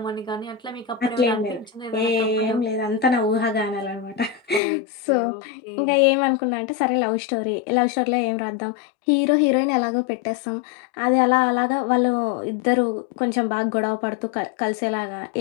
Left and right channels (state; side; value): drops out; right; at 4.6 s